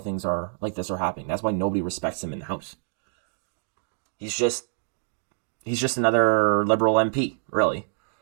are like this are happening. That's why nobody respects him in the House. He's just another liberal MP, really.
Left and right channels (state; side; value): silent; left; digital silence